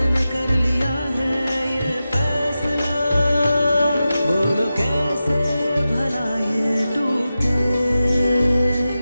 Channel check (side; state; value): both; inverted; correlation -0.93